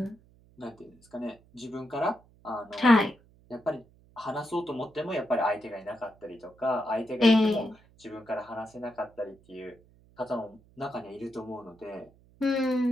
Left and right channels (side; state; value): right; noise; hum, 28 dB below the sound